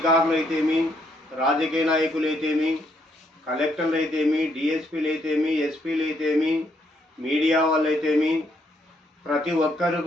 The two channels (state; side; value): normal; both; correlation 0.73